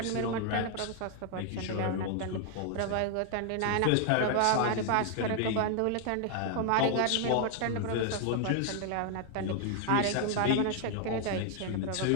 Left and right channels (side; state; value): both; different; correlation 0.00